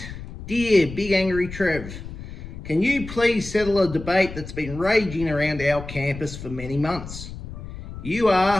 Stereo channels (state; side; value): noise; left; rumble, 11 dB below the sound